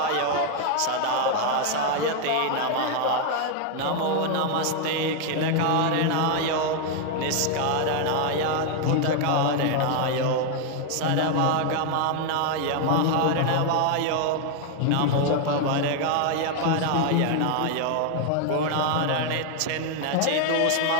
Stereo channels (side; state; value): both; different; correlation 0.00